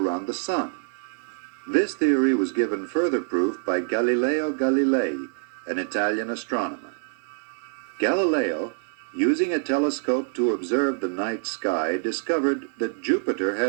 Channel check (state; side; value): silent; left; digital silence